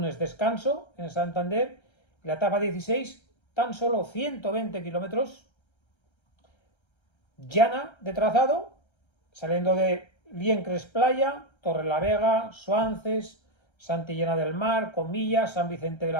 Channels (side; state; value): right; late; 1.3 ms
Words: descanso en Santander. La etapa 16, tan solo 120 kilómetros. Llana de trazado, saliendo de Liencres, Playa, Torrelavega, Suances, Santillana del Mar, Comillas, San Vicente de